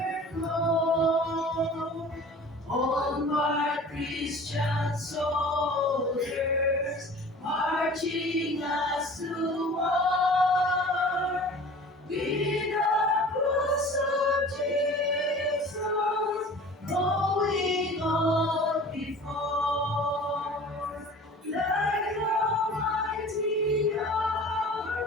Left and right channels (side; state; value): both; normal; correlation 0.43